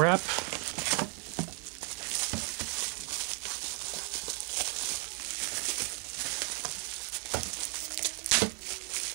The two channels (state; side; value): quieter; left; 38.9 dB